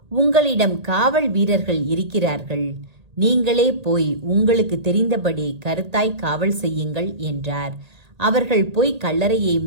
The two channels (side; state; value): left; late; 1.8 ms